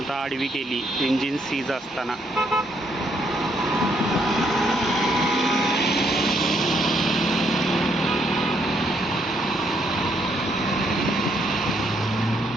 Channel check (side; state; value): both; normal; correlation 0.73